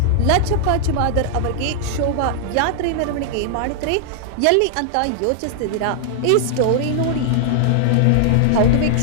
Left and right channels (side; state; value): both; different; correlation -0.01